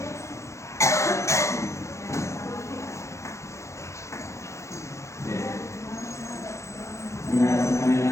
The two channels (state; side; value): late; right; 0.14 ms